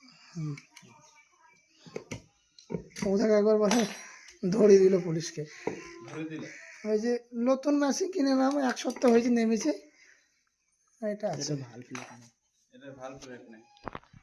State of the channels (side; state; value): both; identical; correlation 1.00